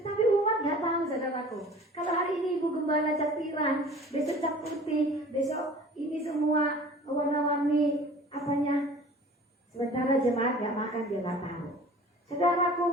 umat gak tahu, saudaraku. Kalau hari ini ibu gembala cat pirang, besok cat putih, besok ini semua warna-warni apanya. Sementara jemaat gak makan, dia gak tahu. Saudaraku,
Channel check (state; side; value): normal; both; correlation 0.45